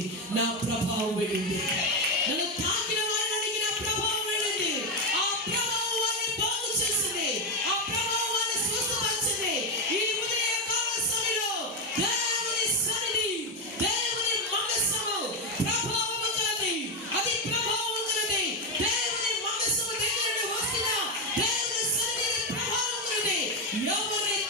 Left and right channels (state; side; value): normal; both; correlation 0.09